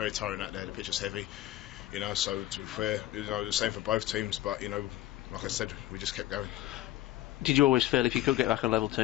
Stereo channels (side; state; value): right; quieter; 14.8 dB